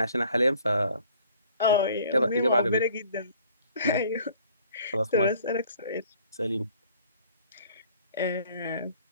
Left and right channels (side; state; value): both; inverted; correlation -0.55